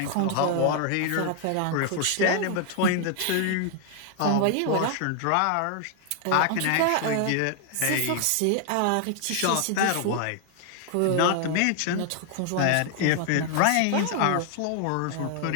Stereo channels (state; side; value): different; both; correlation 0.00